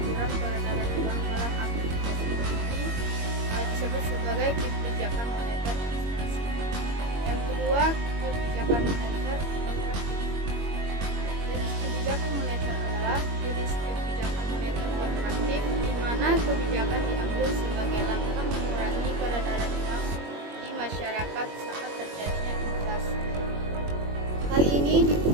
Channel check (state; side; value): late; left; 21 ms